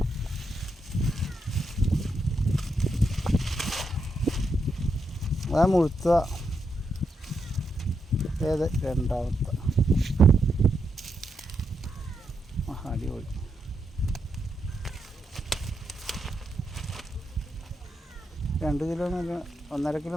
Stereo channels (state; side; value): normal; both; correlation 0.82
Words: അതാ മുഴുത്ത ഏത് രണ്ടാമത്തെ. അടിപൊളി. രണ്ട് കിലോ മേലെ, 1.5 കിലോ